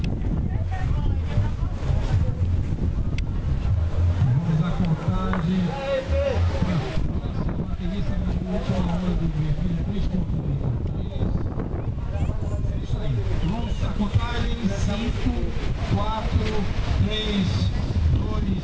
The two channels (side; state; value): both; identical; correlation 1.00